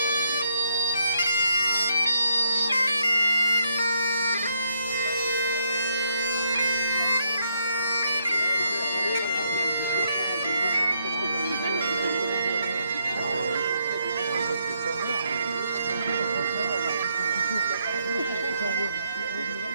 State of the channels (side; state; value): both; inverted; correlation -0.75